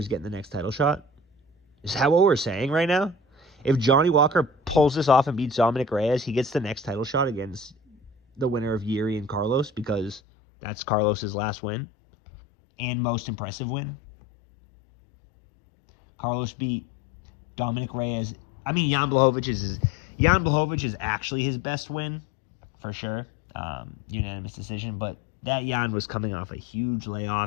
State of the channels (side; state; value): right; drops out; at 10.2 s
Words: getting the next title shot? Is that what we're saying right now? If Johnny Walker pulls this off and beats Dominic Reyes, he gets the next title shot against the winner of Jiří and Carlos, because that's Carlos's last win and most impressive win. Carlos beat Dominic Reyes. I mean, Jan Blachowicz is actually his best win, for sure. Unanimous decision. But that Jan was coming off a huge